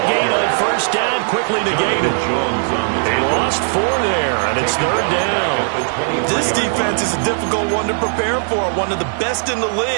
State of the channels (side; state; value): left; silent; digital silence